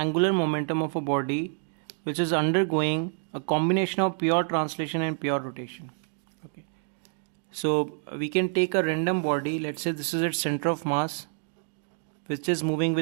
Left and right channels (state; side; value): silent; left; 58 dB below the other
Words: momentum of a body which is undergoing a combination of pure translation and pure rotation. Okay. So we can take a random body, let's say this is its center of mass, which is moving